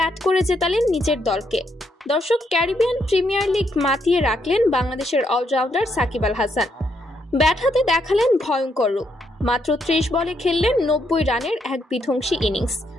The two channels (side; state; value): both; normal; correlation 0.76